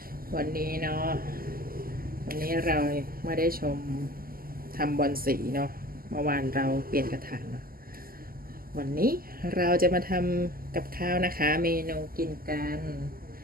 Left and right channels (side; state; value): left; late; 0.42 ms